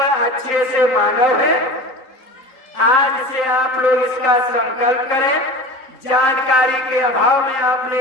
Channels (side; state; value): right; late; 3.8 ms